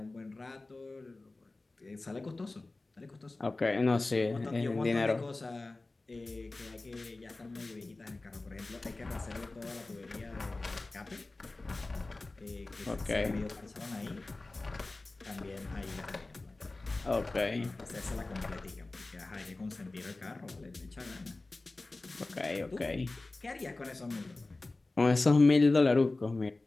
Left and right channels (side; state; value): right; quieter; 3.2 dB